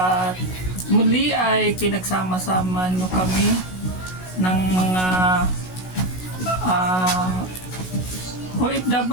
muli ay pinagsama-sama nyo kami ng mga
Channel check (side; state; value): right; late; 16 ms